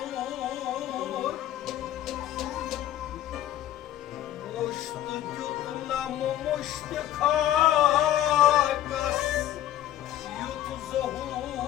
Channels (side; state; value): right; quieter; 12.7 dB